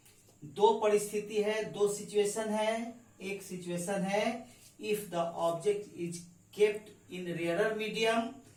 दो परिस्थिति है, दो सिचुएशन है। एक सिचुएशन है if the object is kept in rarer medium,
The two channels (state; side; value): identical; both; correlation 1.00